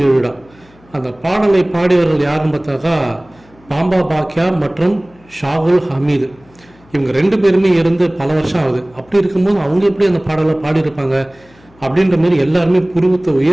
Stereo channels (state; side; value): noise; left; hum, 29 dB below the sound